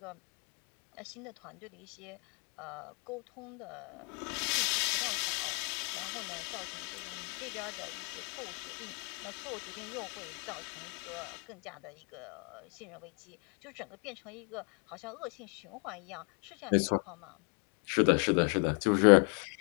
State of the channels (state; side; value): quieter; right; 38.4 dB